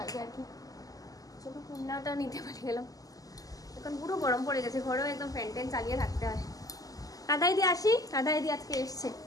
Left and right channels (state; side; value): late; right; 0.17 ms